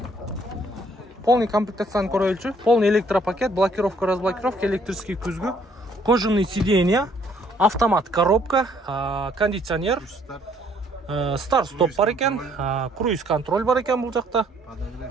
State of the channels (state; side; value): normal; both; correlation 0.64